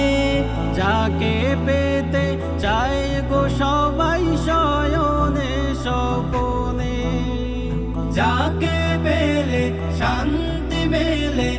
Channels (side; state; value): both; identical; correlation 1.00